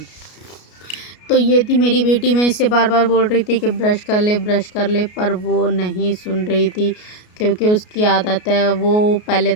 तो ये थी मेरी बेटी, मैं इससे बार बार बोल रही थी कि ब्रश कर ले ब्रश कर ले, पर वो नहीं सुन रही थी, क्योंकि उसकी आदत है, वो पहले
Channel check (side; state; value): right; late; 33 ms